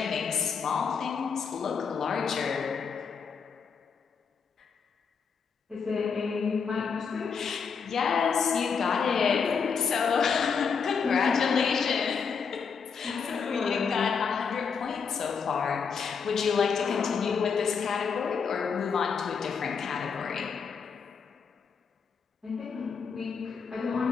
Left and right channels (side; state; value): right; quieter; 6.0 dB